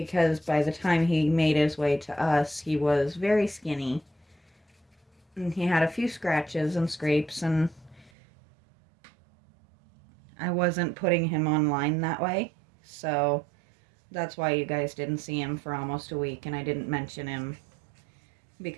by the time he made his way to us, he was very skinny. And he had a few scratches and scrapes, and I wasn't putting him online that way. So that's why you guys didn't see him for almost a week, and I didn't mention him,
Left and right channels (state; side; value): drops out; left; at 8.1 s